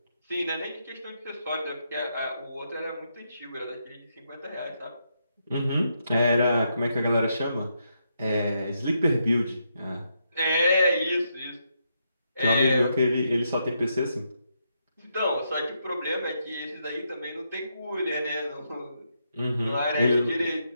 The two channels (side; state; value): both; inverted; correlation -0.80